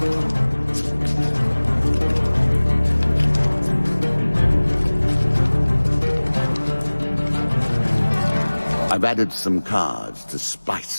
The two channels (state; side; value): inverted; both; correlation -1.00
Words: I've added some cards to